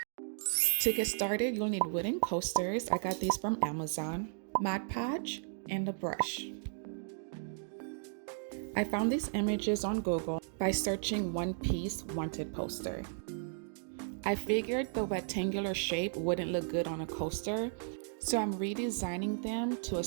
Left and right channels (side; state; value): left; silent; digital silence